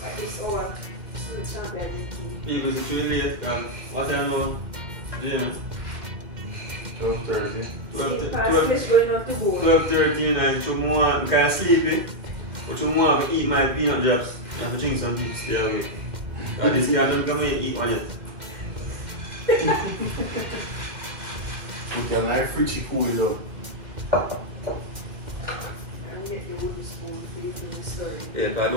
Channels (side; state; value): left; late; 2.1 ms